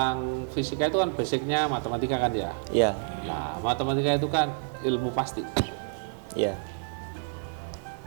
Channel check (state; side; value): silent; left; 59 dB below the other